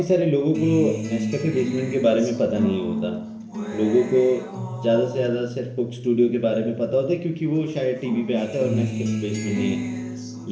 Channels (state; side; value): identical; both; correlation 1.00